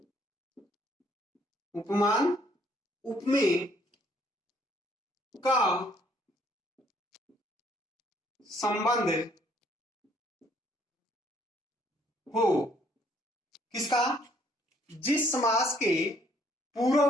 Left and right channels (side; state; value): both; normal; correlation 0.65